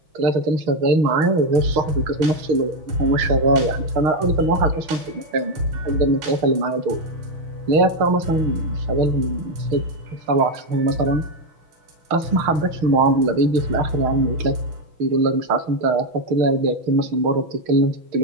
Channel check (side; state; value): left; late; 6.2 ms